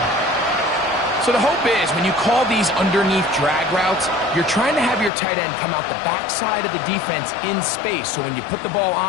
So the hope is when you call these underneath drag routes, you're trying to have your tight end come out the backside of the defense in space. So when you put the ball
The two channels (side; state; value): right; drops out; at 5.1 s